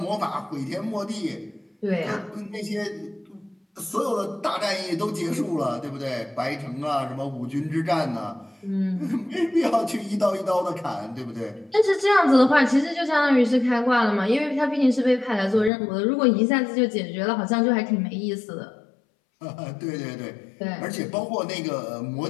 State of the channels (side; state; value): right; drops out; at 15.7 s